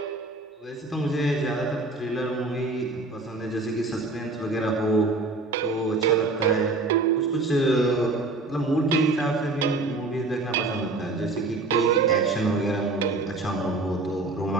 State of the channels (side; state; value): left; quieter; 3.3 dB